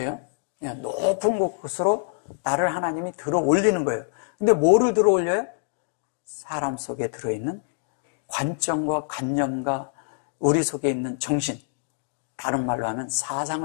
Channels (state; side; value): silent; right; digital silence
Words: 그냥 높은 곳으로 나를 하나님이 들어 올리는 거예요. 근데 뭐를 들어 올려요? 사람 속에 들어있는 관점과 관념과 우리 속에 있는 정신, 다른 말로 하면